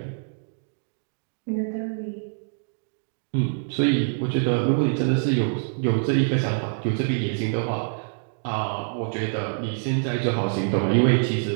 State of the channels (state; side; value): silent; left; digital silence